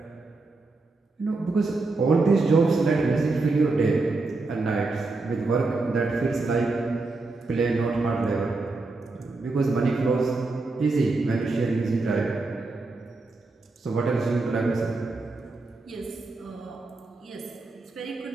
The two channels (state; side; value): quieter; left; 3.5 dB